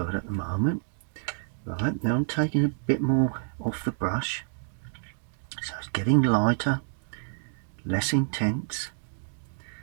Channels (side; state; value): left; silent; digital silence